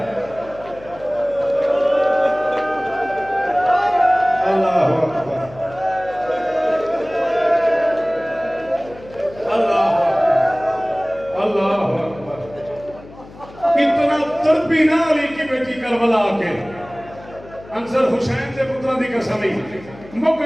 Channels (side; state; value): left; noise; hum, 20 dB below the sound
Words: अल्लाह अकबर, अल्लाह अल्लाह अकबर। इतना तड़पी ना अली की बेटी करबला के अंसर हुसैन से पुत्रा दी कसम ही मुक